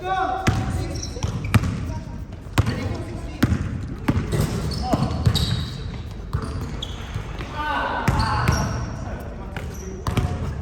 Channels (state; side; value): identical; both; correlation 1.00